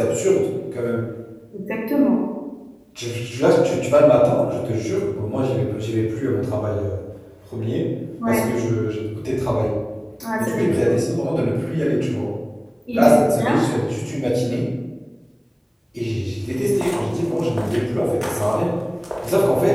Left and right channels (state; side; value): identical; both; correlation 1.00